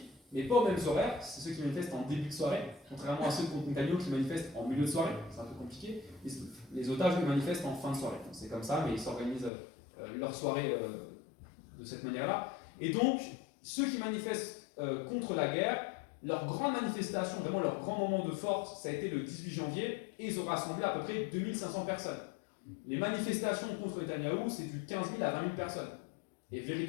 mais pas aux mêmes horaires. C'est ceux qui manifestent en début de soirée, contrairement à ceux contre Netanyahou qui manifestent en milieu de soirée. C'est un peu compliqué. Les otages les manifestent en fin de soirée. C'est comme ça, mais ils s'organisent leur soirée de cette manière-là. Et donc, ceux qui manifestent contre la guerre, leur grande manifestation, vraiment leur grand moment de force, ça a été le 18 janvier, et ils ont rassemblé à peu près 2500 personnes. Les manifestations contre Netanyahou, c'est du 15 000 à 20 000 personnes. Et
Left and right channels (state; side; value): drops out; right; at 9.5 s